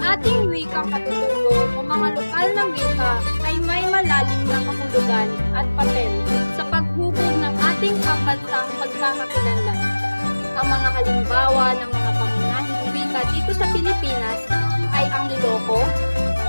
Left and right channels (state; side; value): inverted; both; correlation -1.00